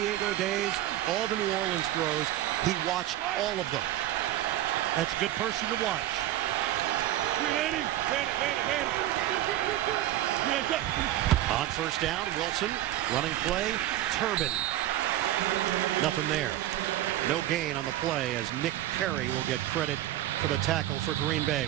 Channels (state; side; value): quieter; left; 13.9 dB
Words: days, all the New Orleans throws, he watched all of them. That's a good person to watch. On first down, Wilson, running play, Turbin. Nothing there. No gain on the play as Nick Perry will get credit for the tackle for Green Bay.